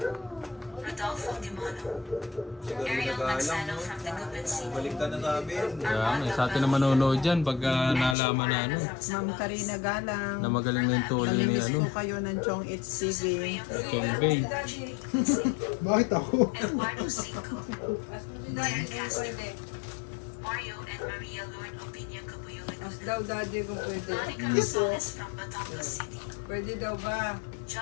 Rodolfo Dimono, Ariel Magsano from the Guban City, Balik ka na sa amin. Kaya may sa atin na manonood dyan pagka nalaman na ano. Ma'am Karina Galang. Na magaling na yung tuloy ni Namimiss ano. po kayo ng Chong It's TV. Chong Bay. Bakit ako? Eduardo Cinco, Claire Castro, Mario and Maria Lord Opinia Cabuyulan, Daw daddy kung pwede. Monica Rosales from Batangas City, Pwede daw ba?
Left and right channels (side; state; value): right; drops out; at 8.2 s